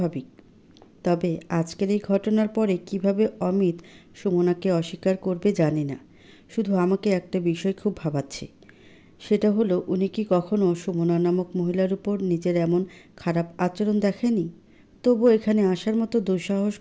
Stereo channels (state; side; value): identical; both; correlation 1.00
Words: তবে আজকের এই ঘটনার পরে কিভাবে অমিত সুমনাকে অস্বীকার করবে জানি না। শুধু আমাকে একটা বিষয় খুব ভাবাচ্ছে। সেটা হলো, উনি কি কখনো সুমনা নামক মহিলার উপর নিজের এমন খারাপ আচরণ দেখেনি? তবু এখানে আসার মতো দুঃসাহস